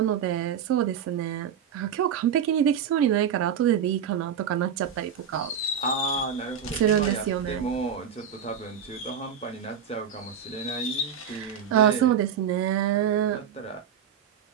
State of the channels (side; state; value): left; quieter; 7.9 dB